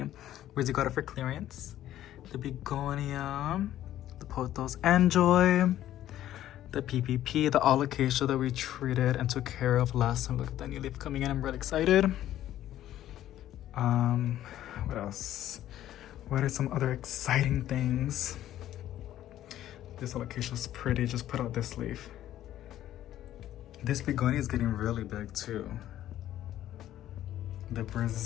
Where's you got it for clearance? The begonia, the pothos enjoy, the PPP, the alocasia that we treated and took care of last time. Look at that new leaf coming in. I'm really excited. What else? What are some other exciting things? This alocasia is pretty. Just put out this leaf. This begonia is getting really big too. The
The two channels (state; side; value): quieter; right; 12.7 dB